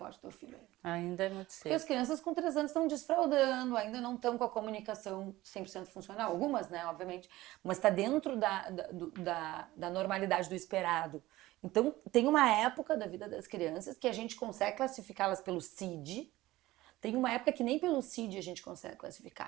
do teu filho ainda. Ainda é muito cedo. Porque as crianças com 3 anos estão desfraldando, ainda não estão com a comunicação 100% funcional. Algumas, né, obviamente. Mas está dentro da normalidade do esperado. Então, tem uma época da vida das crianças que a gente consegue classificá-las pelo CID. Tem uma época que nem pelo CID a gente consegue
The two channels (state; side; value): quieter; left; 17.4 dB